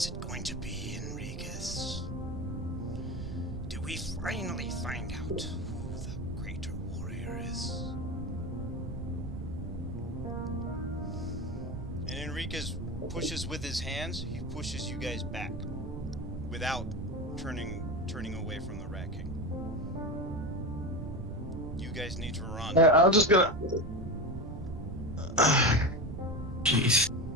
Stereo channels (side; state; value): right; noise; rumble, 8 dB below the sound